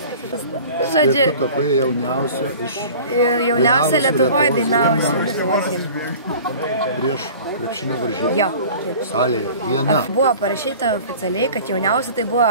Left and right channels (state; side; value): inverted; both; correlation -0.43